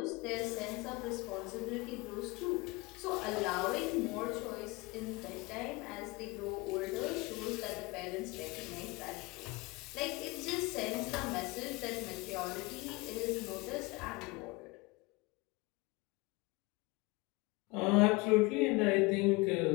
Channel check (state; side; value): quieter; right; 24.7 dB